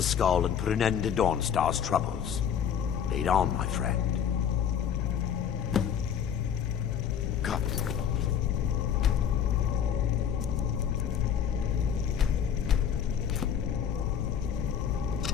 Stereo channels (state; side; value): quieter; right; 8.4 dB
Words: skull and put an end to Dawnstar's troubles. Lead on, my friend. Come.